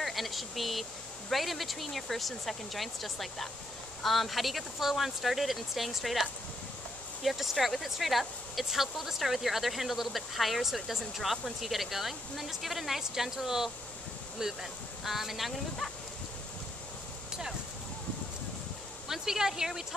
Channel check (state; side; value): noise; left; hum, 24 dB below the sound